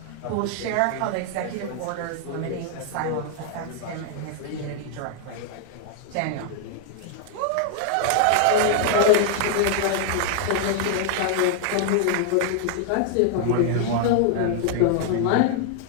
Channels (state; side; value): different; both; correlation 0.00